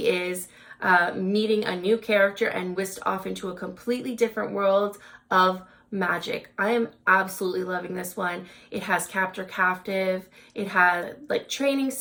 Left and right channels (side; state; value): both; identical; correlation 1.00